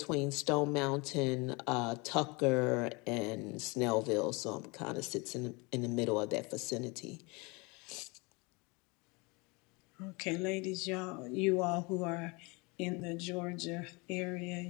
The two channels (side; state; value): right; quieter; 27.8 dB